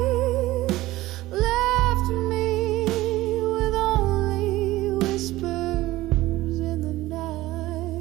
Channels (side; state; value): left; quieter; 17.4 dB